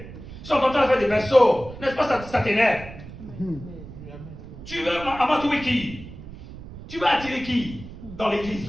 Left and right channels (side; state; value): right; noise; rumble, 14 dB below the sound